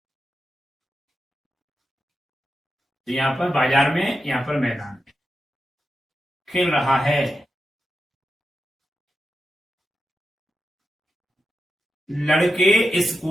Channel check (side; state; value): both; normal; correlation 0.89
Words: तो यहां पर बाजार में, यहां पर मैदान में खेल रहा है। लड़के